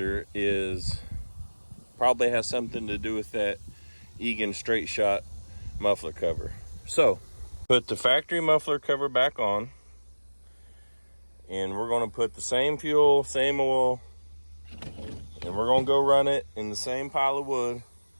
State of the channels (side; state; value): both; inverted; correlation -1.00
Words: is probably has something to do with that Egan straight shot muffler cover. So put the factory muffler cover back on, and we're going to put the same fuel, same oil, and we're going to go run it in the same pile of wood,